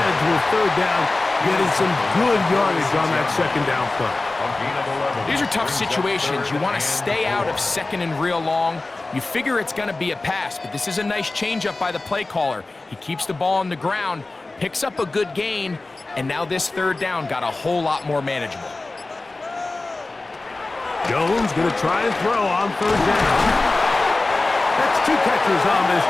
third down, getting some good yardage on that second down play. These are tough situations. You want to stay out of second and real long. You figure it's going to be a pass, but this is a nice changeup by the play caller. He keeps the ball on the ground, picks up a good gain, and now this third down got a whole lot more manageable. Jones going to try and throw on third down. That's two catches on this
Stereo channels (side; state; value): right; quieter; 3.2 dB